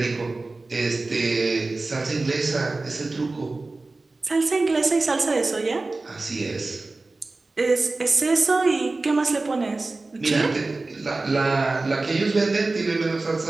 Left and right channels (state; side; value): quieter; left; 3.3 dB